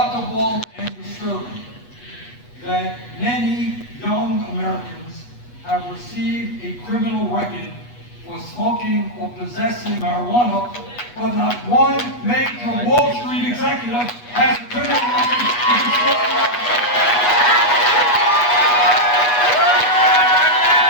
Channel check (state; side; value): late; right; 8.2 ms